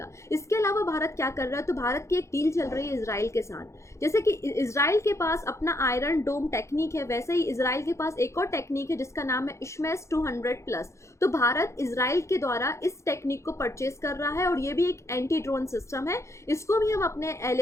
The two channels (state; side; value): late; right; 0.14 ms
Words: इसके अलावा भारत क्या कर रहा है, तो भारत की एक डील चल रही है इसराइल के साथ। जैसे कि इसराइल के पास अपना आयरन डोम टेक्निक है, वैसे ही इसराइल के पास एक और टेक्निक है जिसका नाम है इशमेस 200+। तो भारत इसराइल के द्वारा इस टेक्निक को परचेज कर रहा है और ये भी एक एंटी ड्रोन सिस्टम है। इसको भी हम अपने